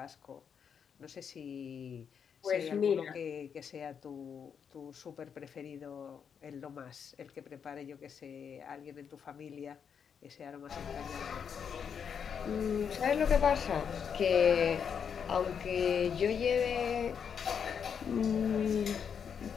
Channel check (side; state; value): right; quieter; 7.2 dB